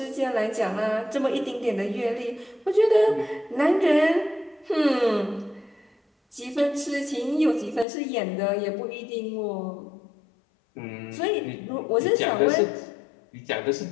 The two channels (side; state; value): right; drops out; at 7.9 s